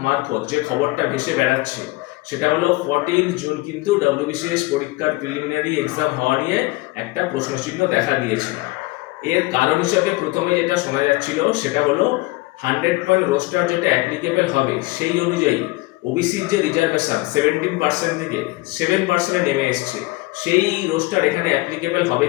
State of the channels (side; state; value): right; quieter; 21.5 dB